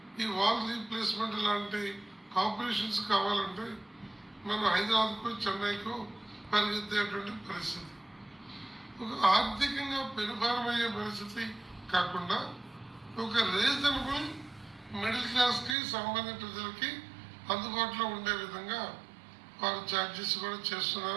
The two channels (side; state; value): left; drops out; at 15.8 s